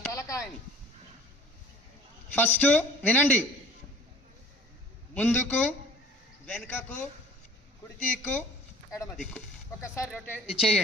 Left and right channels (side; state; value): both; normal; correlation 0.48